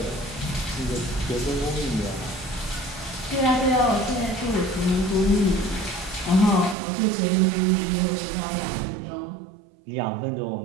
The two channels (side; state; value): left; drops out; at 6.8 s